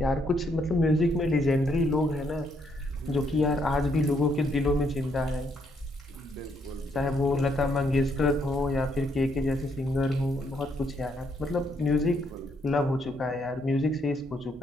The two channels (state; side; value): normal; both; correlation 0.73